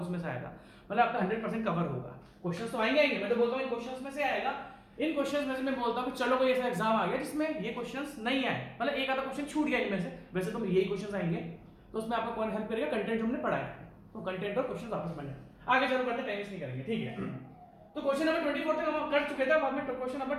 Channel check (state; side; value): identical; both; correlation 1.00